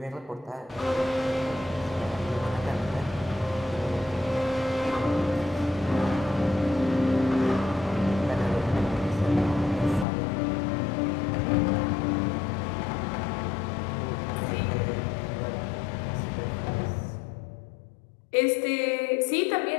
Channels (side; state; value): right; drops out; at 10.1 s